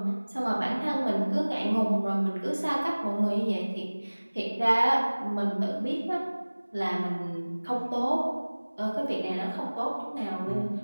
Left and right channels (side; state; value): both; inverted; correlation -1.00